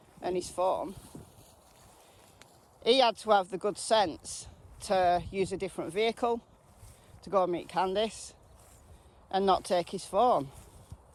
and his phone, he had to have the good sense to use a different vehicle to go and meet Candice and not take his phone.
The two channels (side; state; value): both; identical; correlation 1.00